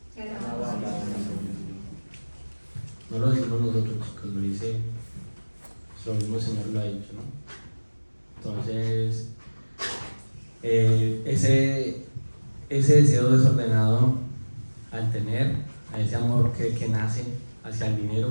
no lo decimos nosotros, chicos, lo dice lo mismo Señor lo ha dicho, ¿no? Entonces, ese deseo desordenado al tener, a ese amor que nace hacia el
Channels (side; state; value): both; inverted; correlation -1.00